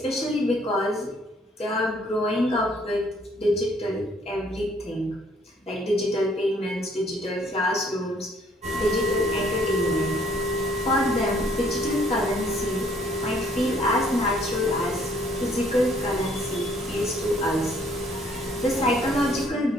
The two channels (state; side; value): normal; both; correlation 0.63